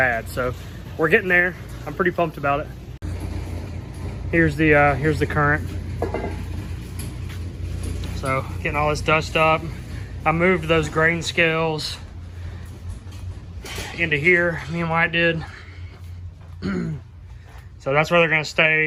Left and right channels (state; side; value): identical; both; correlation 1.00